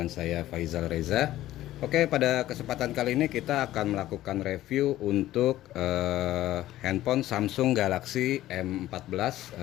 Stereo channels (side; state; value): right; quieter; 14.6 dB